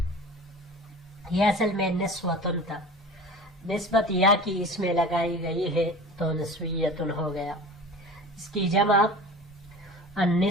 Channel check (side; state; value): both; normal; correlation 0.37